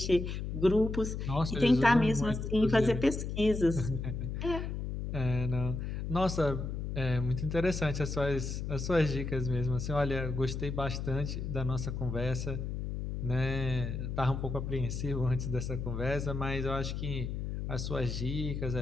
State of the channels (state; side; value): noise; left; hum, 4 dB below the sound